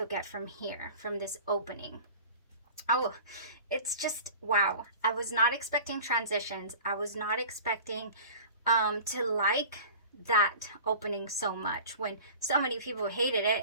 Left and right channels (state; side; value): inverted; both; correlation -0.41